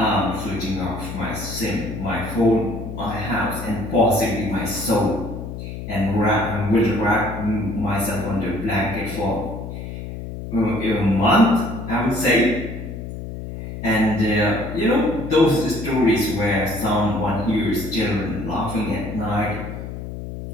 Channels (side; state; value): left; noise; hum, 8 dB below the sound